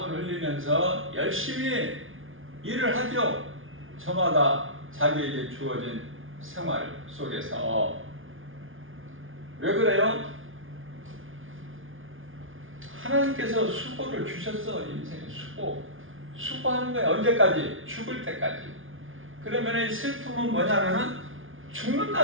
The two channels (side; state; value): left; late; 0.58 ms